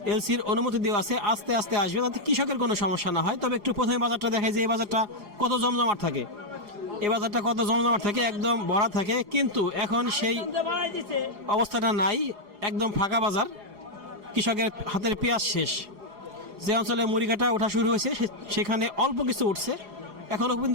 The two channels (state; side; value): late; left; 4.8 ms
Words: এলসির অনুমতি দেওয়া আছে, আস্তে আস্তে আসবে, যাতে কৃষকের কোনো সমস্যা না হয়। তবে একটু প্রথমে বাজারটা দেখায় যে এই বাজারটা কত জমজমাট থাকে। এই বাজারটা কত জমজমাট থাকে, একদম ভরা থাকে, কিন্তু এখন সেই অবস্থাটা নাই, একদম ফাঁকা বাজার। কৃষকের হাতের পেঁয়াজ শেষ। যে অঞ্চলে মুড়ি কাটা ওঠা শুরু হয়েছে সেখানে অল্প কিছু উঠছে, এখনও